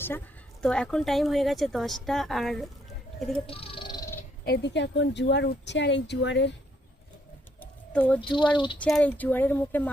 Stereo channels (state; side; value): normal; both; correlation 0.71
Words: তো এখন টাইম হয়ে গেছে 10টা, আর এদিকে এখন জোয়ার উঠছে, আর এই জোয়ারের মুখে